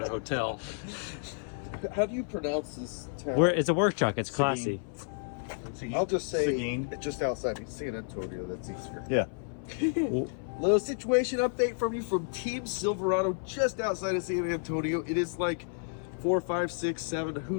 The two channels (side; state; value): right; silent; 57 dB below the other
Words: a hotel. How do you pronounce this town? It's a work truck, it's classy. I'll just say Seguin. it's just outside San Antonio, that's easier. Yeah. Little situation update from you from Team Silverado just outside of San Antonio. It is like 4, 5, 6, 7,